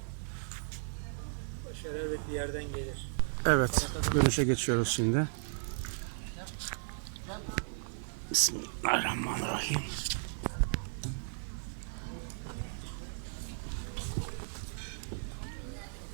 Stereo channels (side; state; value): left; silent; 54 dB below the other